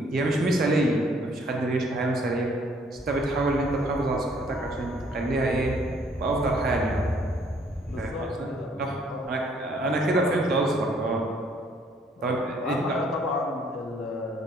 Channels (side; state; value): both; normal; correlation 0.63